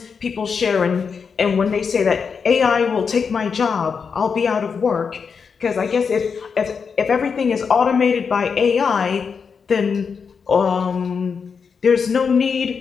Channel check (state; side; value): quieter; right; 5.9 dB